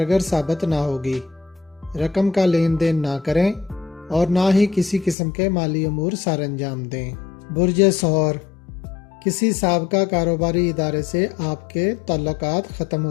साबित ना होगी। रकम का लेन देन ना करें और ना ही किसी किस्म के माली अमूर सर अंजाम दें। बुर्जे सहर, किसी साबका कारोबारी इदारे से आपके ताल्लुकात ख़त्म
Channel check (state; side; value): drops out; right; at 5.2 s